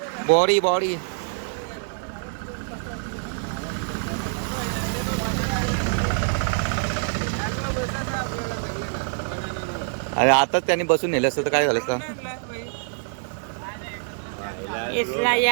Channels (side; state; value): left; silent; digital silence